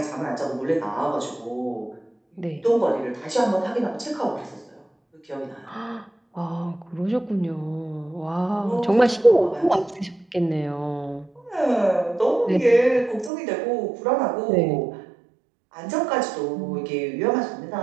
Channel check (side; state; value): left; drops out; at 13.3 s